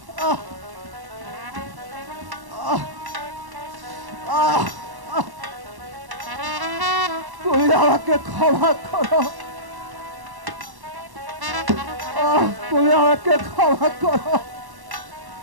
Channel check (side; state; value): left; late; 1.1 ms